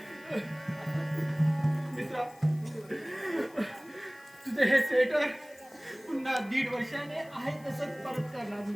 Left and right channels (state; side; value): noise; left; hiss, 26 dB below the sound